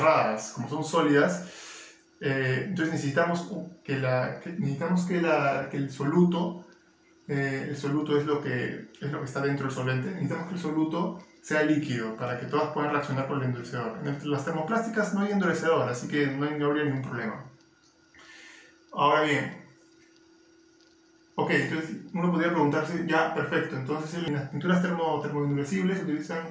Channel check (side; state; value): both; identical; correlation 1.00